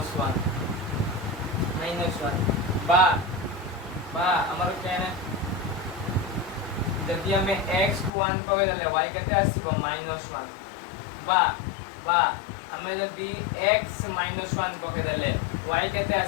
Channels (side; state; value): right; drops out; at 8.1 s